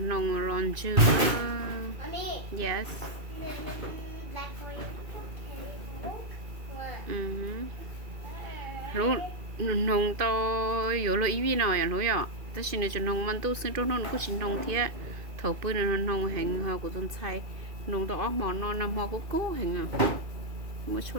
ron chưa. Mommy, Yes. black for you. Lúc nông to yếu là ý vi nào vậy lúc ạ? Tất nhiên là cho nông mình tu sinh trong nông cũng chỉ nông thiệt. Thầu bữa là nông hành họ của tôi xài nông to món nó nằm họ cũng cố hành à. Mới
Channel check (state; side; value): late; left; 2.5 ms